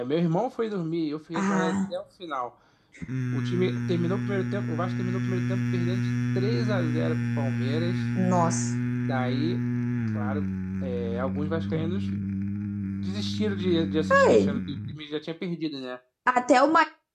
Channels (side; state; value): both; identical; correlation 1.00